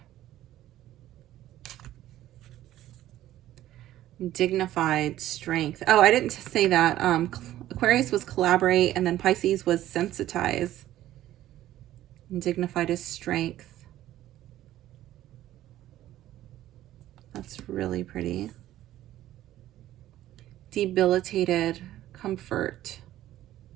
Dignified strength. Oh, I didn't say that. Aquarius was collaborate, and then Pisces was sensitize. And dignified is strength. That's really pretty. Debilitated, comfort.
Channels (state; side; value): quieter; left; 13.7 dB